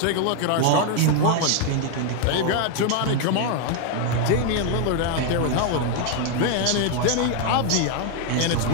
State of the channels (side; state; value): both; different; correlation 0.01